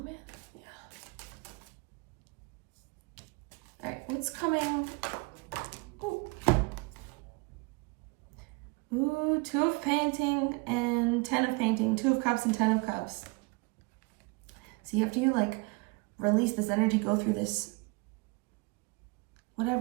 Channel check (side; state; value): left; quieter; 29.0 dB